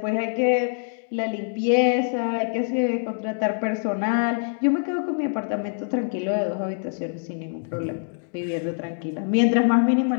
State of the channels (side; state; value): right; silent; digital silence